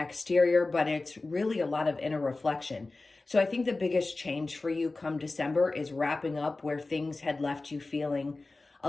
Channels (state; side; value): quieter; right; 3.3 dB